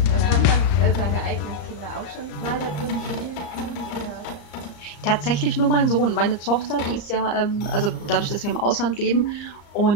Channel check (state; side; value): late; right; 35 ms